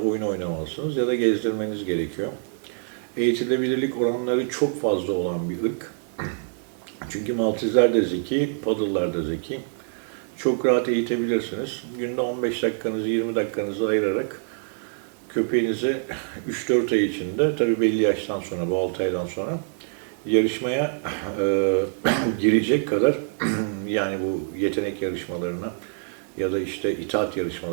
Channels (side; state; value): left; silent; 62 dB below the other